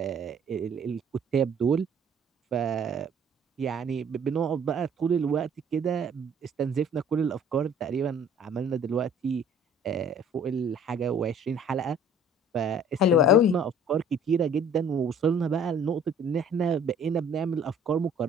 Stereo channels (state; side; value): normal; both; correlation 0.53